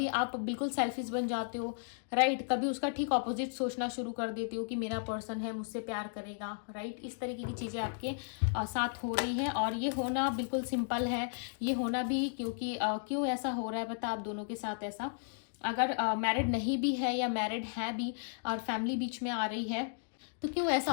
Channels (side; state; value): right; silent; digital silence